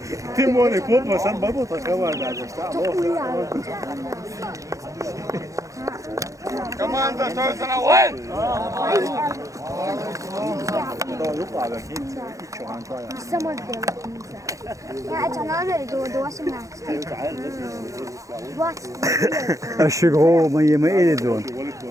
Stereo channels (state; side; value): late; left; 0.16 ms